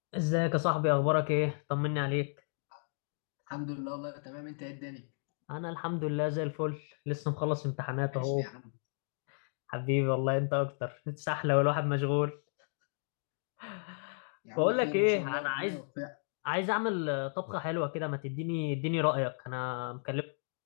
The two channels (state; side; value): silent; right; digital silence